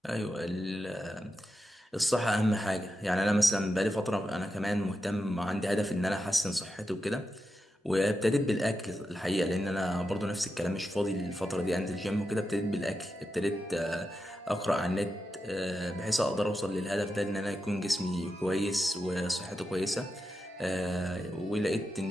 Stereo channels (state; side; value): normal; both; correlation 0.88